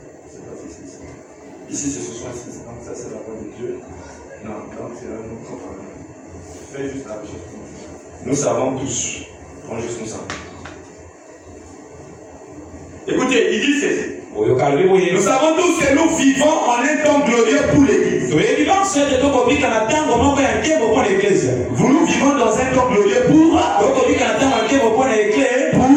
C'est pas ici. Ici c'est 66. Donc ça c'est la parole de Dieu. Non, donc c'est un autre. Fais juste la recherche. Nous savons tous. Prends juste nous savons. Écoutez, il dit ceci. Nous savons tous que nous vivons en un temps glorieux pour l'Église. Vous nous vivons dans un temps glorieux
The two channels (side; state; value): both; identical; correlation 1.00